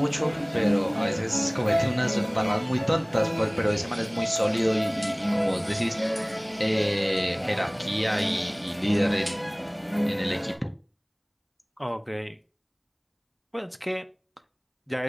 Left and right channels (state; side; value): identical; both; correlation 1.00